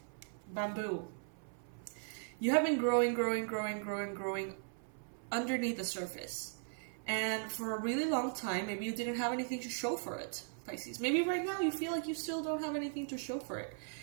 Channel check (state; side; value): silent; left; 52 dB below the other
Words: Bamboo. You have been growing underneath the surface. And for a really long time, maybe you didn't have anything to show for it, Pisces. Maybe right now you feel like you still don't have anything to show for it.